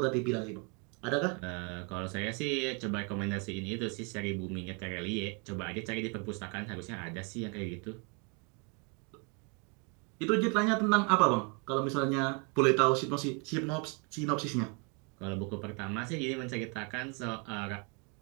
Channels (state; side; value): quieter; left; 34.0 dB